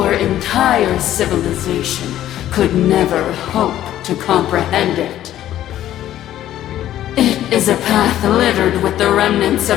entire civilization could never hope to comprehend it. It is a path littered with the remnants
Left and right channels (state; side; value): quieter; right; 12.6 dB